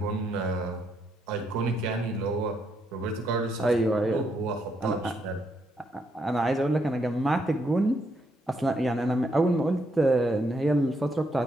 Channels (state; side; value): normal; both; correlation 0.77